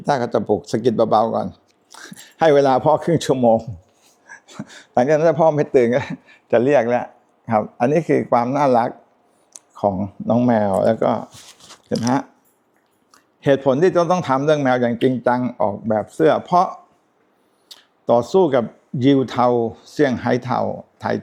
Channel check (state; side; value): identical; both; correlation 1.00